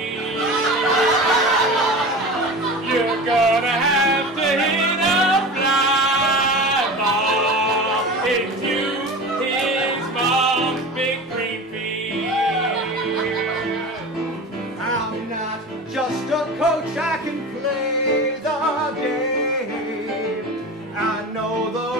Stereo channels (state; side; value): normal; both; correlation 0.32